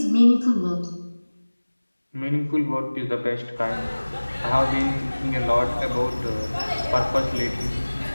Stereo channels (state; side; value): inverted; both; correlation -1.00